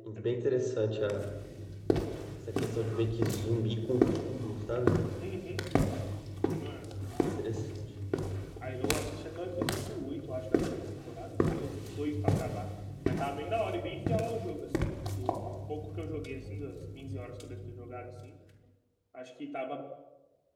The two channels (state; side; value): identical; both; correlation 1.00